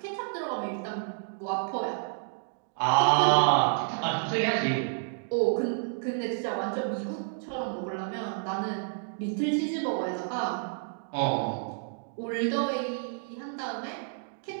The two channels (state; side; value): silent; left; digital silence